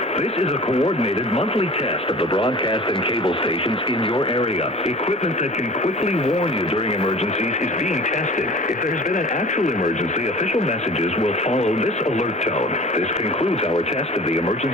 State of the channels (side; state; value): both; normal; correlation 0.42